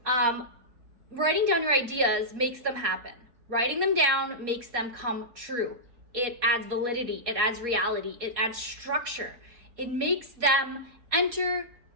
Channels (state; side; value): late; left; 4.2 ms